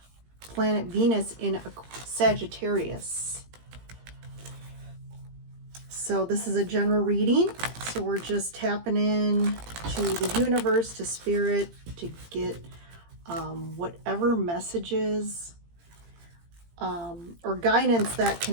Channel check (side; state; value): left; late; 17 ms